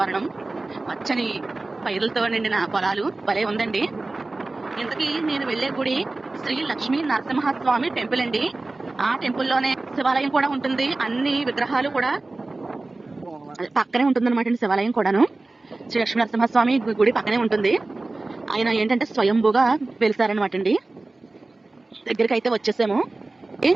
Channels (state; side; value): quieter; left; 3.2 dB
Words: పచ్చని పైరులతో నిండిన పొలాలు భలే ఉందండి. ఇంతకీ నేను వెళ్లే గుడి శ్రీ లక్ష్మీ నరసింహస్వామి టెంపుల్ అండి. ఆ టెంపుల్లోనే శివాలయం కూడా ఉంటుంది. అన్ని విగ్రహాలు కూడా పక్కనే ఉంటుందన్నమాట అండి. శివాలయం కూడాను శ్రీ లక్ష్మీ నరసింహస్వామి గుడి పక్కనే ఉంటుంది. ఆయన ఏంటంటే స్వయంభూగా వెలిసారనమాట అండి. దగ్గరికి అయితే వచ్చేసాము.